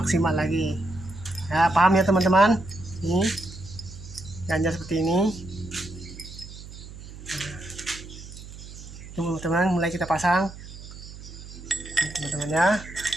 lagi. Ya, paham ya teman-teman? Ini ganjal seperti ini. Teman-teman, mulai kita pasang teman-teman ya.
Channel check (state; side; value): noise; right; hum, 14 dB below the sound